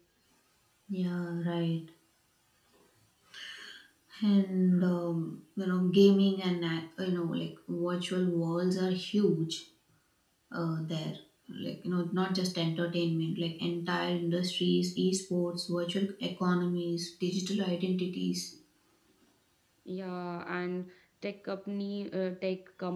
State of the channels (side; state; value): both; identical; correlation 1.00